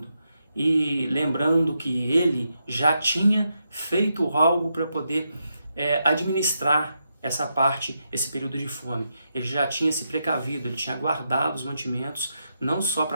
E lembrando que ele já tinha feito algo para poder administrar essa parte, esse período de fome. Ele já tinha se precavido, ele tinha guardado os mantimentos, não só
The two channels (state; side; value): inverted; both; correlation -0.84